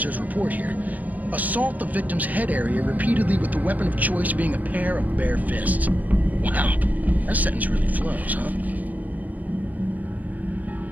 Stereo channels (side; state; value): left; late; 0.080 ms